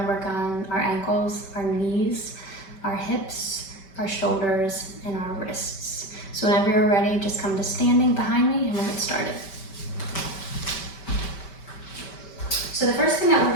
to work on our ankles, our knees, our hips, our shoulders, and our wrists. So whenever you're ready, just come to standing behind me and we'll get started. So the first thing that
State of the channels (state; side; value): late; right; 5.2 ms